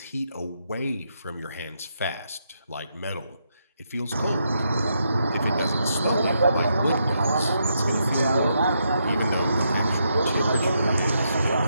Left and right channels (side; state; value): both; inverted; correlation -0.80